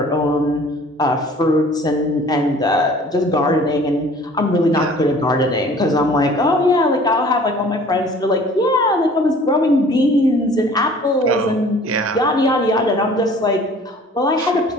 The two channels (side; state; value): both; normal; correlation 0.50